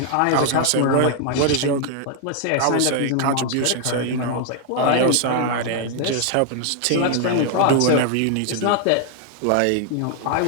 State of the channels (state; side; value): different; both; correlation 0.00